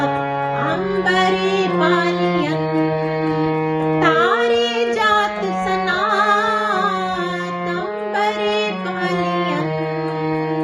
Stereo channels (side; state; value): both; identical; correlation 1.00